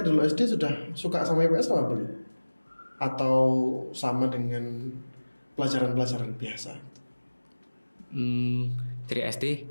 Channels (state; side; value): inverted; both; correlation -1.00